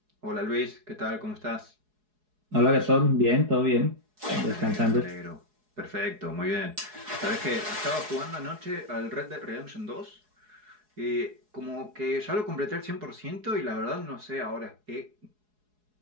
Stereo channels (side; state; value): left; late; 4.7 ms